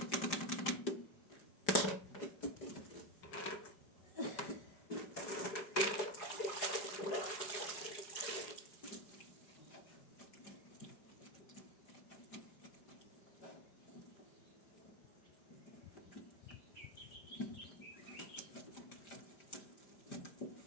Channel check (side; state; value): right; late; 4.8 ms